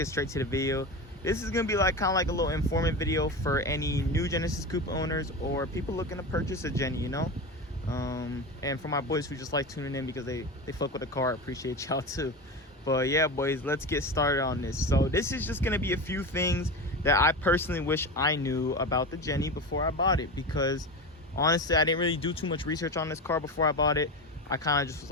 straight to the video. This is gonna be like kind of like a little informative video for any new Genesis Coupe owners or people looking to purchase a Jenny, you know. And for my boys who just like tuning in because they fuck with the car, I appreciate y'all too. But yeah, boys, let's get started on this. So this is just gonna be a few things that I personally wish I knew about the Jenny before I bought it, because honestly I didn't really do too much research on this car before I bought it. I kind of just was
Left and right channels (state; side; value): normal; both; correlation 0.24